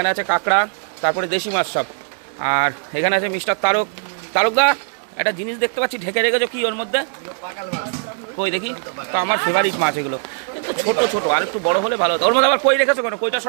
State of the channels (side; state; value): left; silent; 64 dB below the other